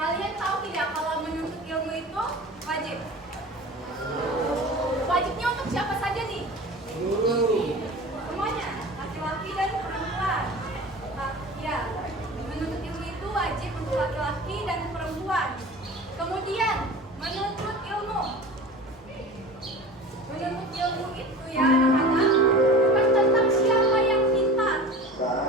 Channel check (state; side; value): normal; both; correlation 0.36